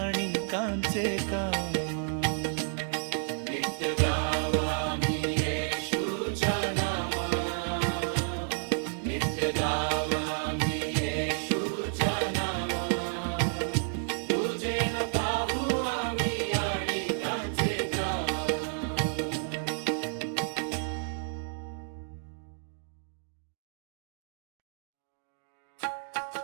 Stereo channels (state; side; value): silent; left; digital silence